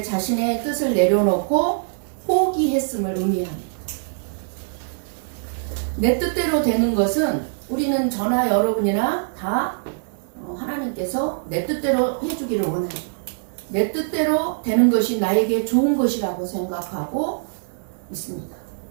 자신의 뜻을 내려놓고 포기했음을 의미합니다. 내 뜻대로 되는 것은 우리는 저나 여러분이나 다 하나님께서 내 뜻대로 해주기를 원해요. 내 뜻대로 되는 것이 나에게 좋은 것이라고 생각하고 있습니다.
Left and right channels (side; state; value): left; silent; digital silence